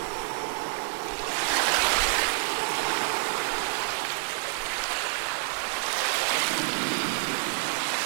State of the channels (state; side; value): silent; left; digital silence